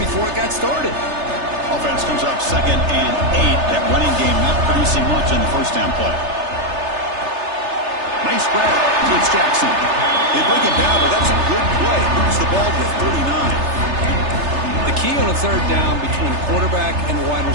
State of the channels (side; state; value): left; late; 3.3 ms